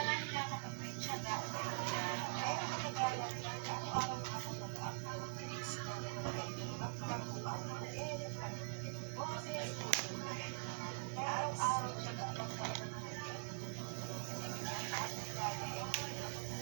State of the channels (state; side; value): silent; left; digital silence